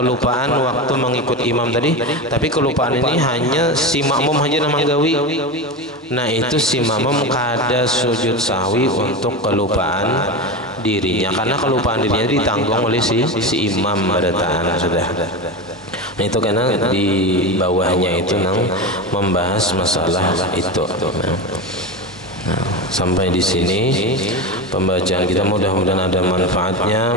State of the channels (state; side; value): normal; both; correlation 0.21